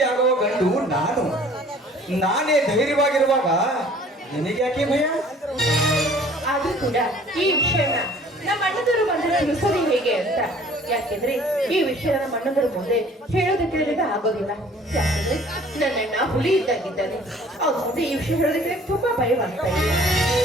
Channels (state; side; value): normal; both; correlation 0.53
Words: ಆಗುವ ಗಂಡು ನಾನು, ನಾನೇ ಧೈರ್ಯವಾಗಿರುವಾಗ ನಿನಗೆ ಯಾಕೆ ಭಯ? ಆದ್ರೂ ಕೂಡ ಈ ವಿಷಯನ ನಮ್ಮ ಅಣ್ಣದವರು ಬಂದ್ರೆ ತಿಳಿಸೋದು ಹೇಗೆ ಅಂತ. ಯಾಕೆಂದ್ರೆ ಈ ವಿಷಯ ನಮ್ಮ ಅಣ್ಣದರ ಮುಂದೆ ಹೇಳೋದಕ್ಕೆ ನನಗೆ ಆಗೋದಿಲ್ಲ. ಯಾಕೆಂದ್ರೆ ನನ್ನಣ್ಣ ಹುಲಿ ಇದ್ದಾಗಿದ್ದಾನೆ. ಅವ್ರ ಮುಂದೆ ಈ ವಿಷಯ ಹೇಳೋದಕ್ಕೆ ತುಂಬಾ ಭಯವಾಗ್ತಾ ಇದೆ.